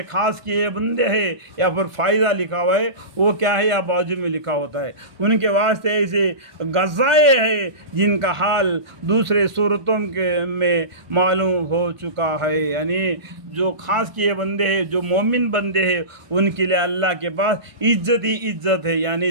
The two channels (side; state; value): left; late; 1.5 ms